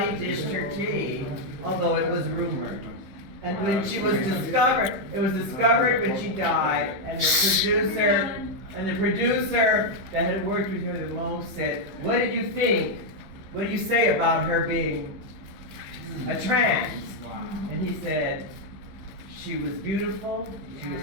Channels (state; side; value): late; left; 15 ms